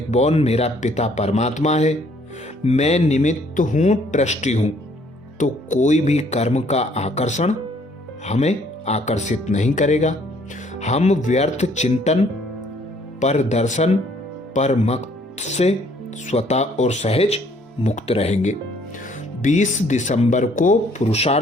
मेरा पिता परमात्मा है। मैं निमित्त हूं, ट्रस्टी हूं, तो कोई भी कर्म का आकर्षण हमें आकर्षित नहीं करेगा। हम व्यर्थ चिंतन, पर दर्शन, पर मत से स्वतः और सहज मुक्त रहेंगे। 20 दिसंबर को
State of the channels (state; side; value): normal; both; correlation 0.62